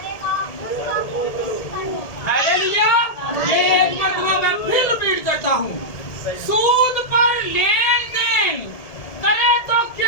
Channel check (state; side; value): late; right; 1.7 ms